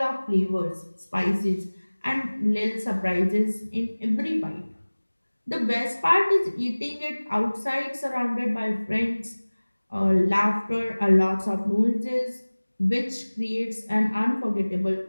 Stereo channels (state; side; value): inverted; both; correlation -1.00